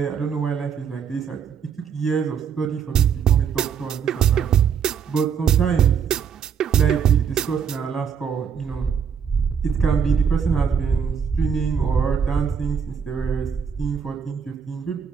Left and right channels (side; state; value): left; quieter; 7.1 dB